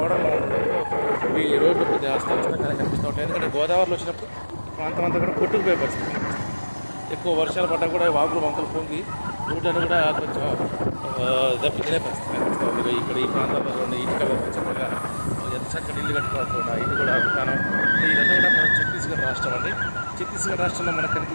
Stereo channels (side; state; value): both; inverted; correlation -1.00